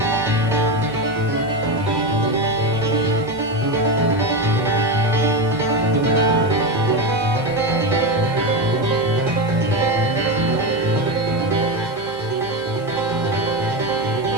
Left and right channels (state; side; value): noise; left; hiss, 27 dB below the sound